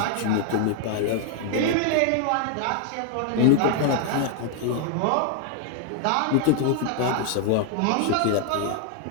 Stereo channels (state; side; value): different; both; correlation 0.00